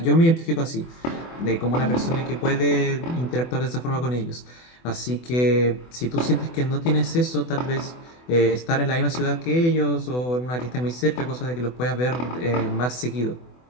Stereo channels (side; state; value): right; late; 24 ms